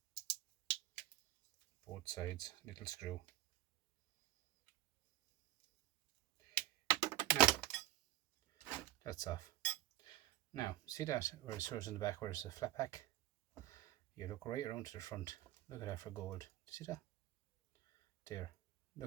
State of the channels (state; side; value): quieter; left; 14.8 dB